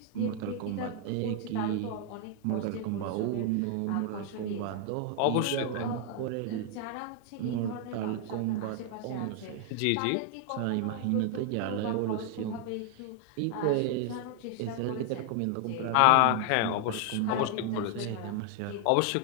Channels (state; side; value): different; both; correlation 0.00